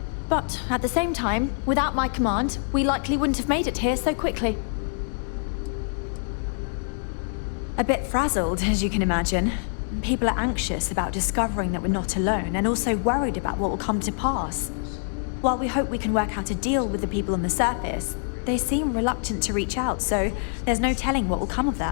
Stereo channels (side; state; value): right; silent; digital silence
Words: But at the same time, without my command, we likely wouldn't have made it here so quickly. A bit frazzled, as you can imagine. People are anxious about discovering that we're not alone, and also worried about what will come to pass. While we hope we can work out a deal with the people on the surface, they seem reluctant to reach out, so there's no telling what will come of